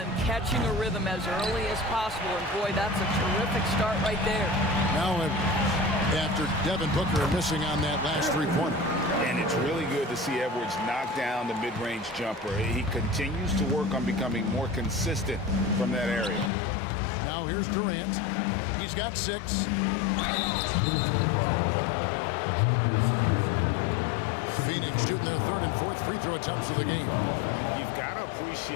catching a rhythm as early as possible. And boy, that's a terrific start right there. Now Edwards, after Devin Booker missing on that last three-pointer. And it's really good to see Edwards knock down the mid-range jumper. He continues to work on becoming more consistent from that area. Now here's Durant. He's got 6. Phoenix shooting their 3rd and 4th free throw attempts of the game. You've got to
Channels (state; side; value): drops out; right; at 16.5 s